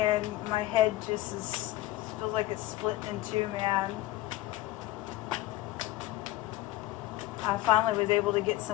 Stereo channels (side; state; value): right; quieter; 16.3 dB